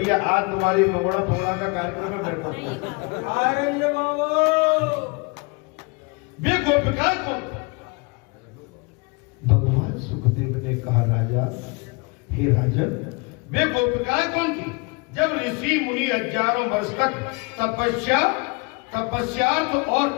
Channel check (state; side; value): quieter; right; 29.4 dB